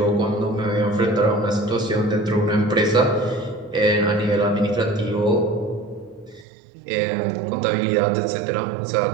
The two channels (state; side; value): drops out; left; at 6.5 s